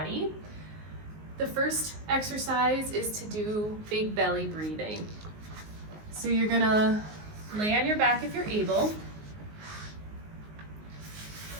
The first exercise is to do big belly breathing. So you're going to lay on your back if you're able.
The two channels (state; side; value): late; left; 19 ms